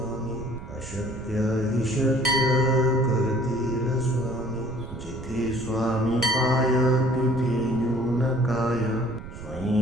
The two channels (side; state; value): right; noise; rumble, 12 dB below the sound